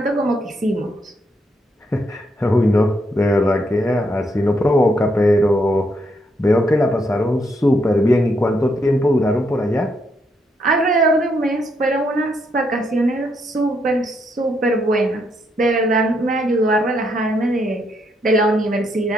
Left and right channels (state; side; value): normal; both; correlation 0.76